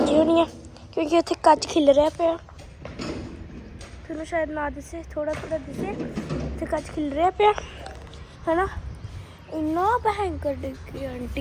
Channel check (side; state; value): both; identical; correlation 1.00